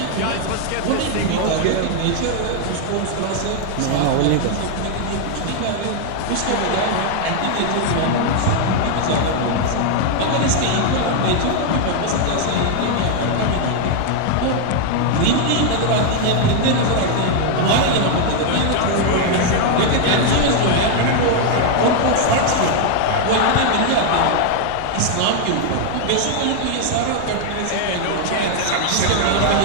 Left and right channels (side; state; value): both; different; correlation 0.00